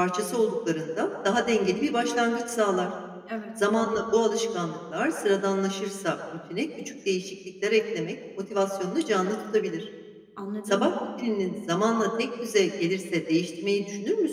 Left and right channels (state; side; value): identical; both; correlation 1.00